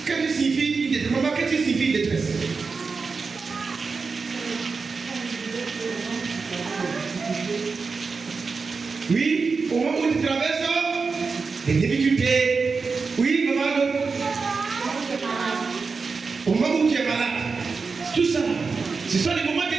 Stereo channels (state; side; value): quieter; left; 4.7 dB